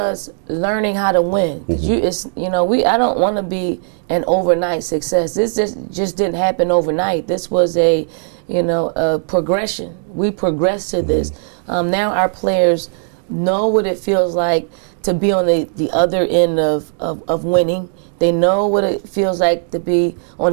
learning how to win. Mm-hmm. I don't want to be an overnight success. This just didn't happen overnight. This was a progression. We progressed to this. Mm-hmm. Now our players know what it feels like to be on the other end of winning. They know what it feels like to be on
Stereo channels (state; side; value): silent; left; digital silence